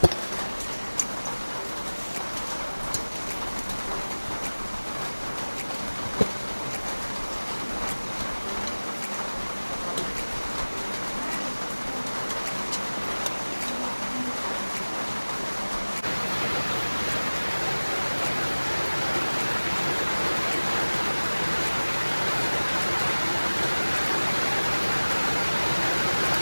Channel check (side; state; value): both; inverted; correlation -1.00